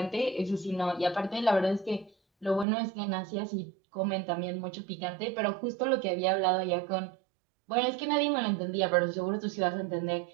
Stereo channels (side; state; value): left; drops out; at 2.7 s